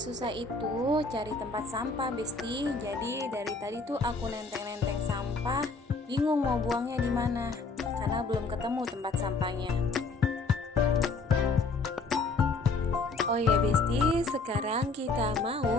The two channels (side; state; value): right; quieter; 3.8 dB